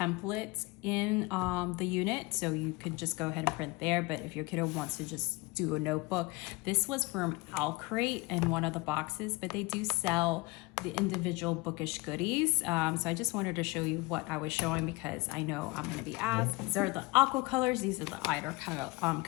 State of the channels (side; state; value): right; quieter; 24.3 dB